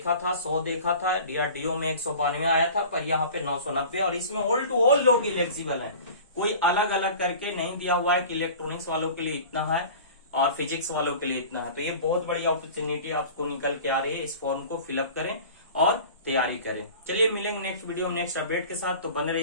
था, 100 देखा था, DRDO में 192 आया था, पर यहाँ पे 990, और इसमें ऑल टू ऑल लोग इलेक्जिबल है, कोई अलग अलग करके नहीं दिया हुआ है कि इलेक्ट्रॉनिक्स वालों के लिए इतना है और फिजिक्स वालों के लिए इतना है। तो ये बहुत बड़ी अपॉर्चुनिटी आपको निकल के आ रही है, इस फॉर्म को फिलअप करें और तैयारी करें। चलिए मिलेंगे नेक्स्ट वीडियो में नेक्स्ट अपडेट के साथ, तो बने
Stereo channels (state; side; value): inverted; both; correlation -0.40